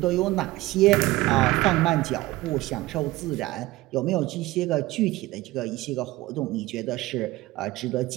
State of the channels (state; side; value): quieter; left; 18.4 dB